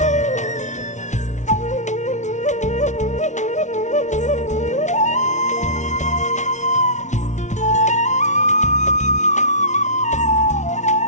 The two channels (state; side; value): late; right; 0.35 ms